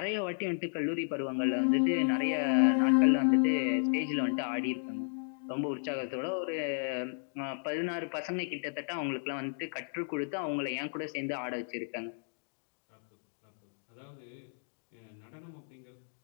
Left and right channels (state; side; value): silent; right; digital silence